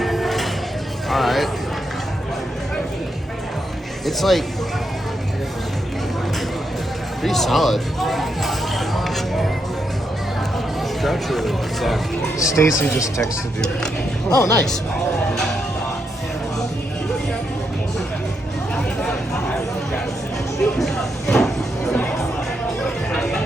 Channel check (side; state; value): both; normal; correlation 0.81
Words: All right. It's like pretty solid. Stacy just texted you. Oh, nice.